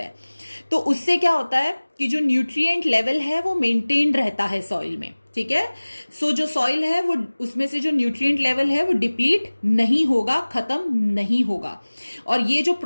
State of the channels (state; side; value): inverted; both; correlation -1.00